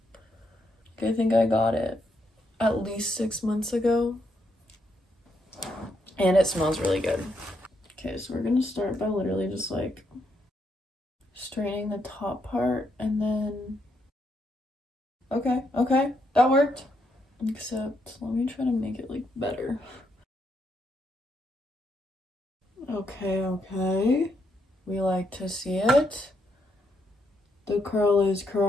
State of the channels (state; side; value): normal; both; correlation 0.78